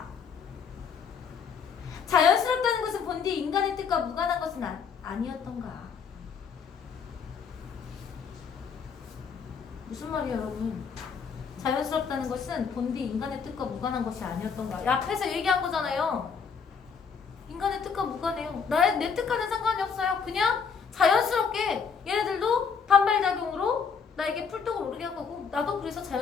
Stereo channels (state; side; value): quieter; right; 6.2 dB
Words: 자연스럽다는 것은 본디 인간의 뜻과 무관한 것은 아니었던가? 무슨 말이에요 여러분? 자연스럽다는 것은 본디 인간의 뜻과 무관한 것이 아니었던가? 앞에서 얘기한 거잖아요. 인간의 뜻과 무관해요. 내 뜻과는 상관이 없어요. 그냥 자연스럽게 얘네들도 반발작용으로 나에게 풀독을 오르게 한 거고 나도 그래서